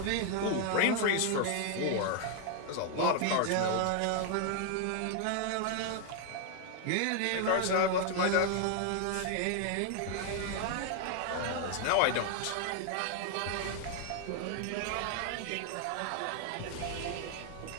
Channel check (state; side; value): different; both; correlation 0.00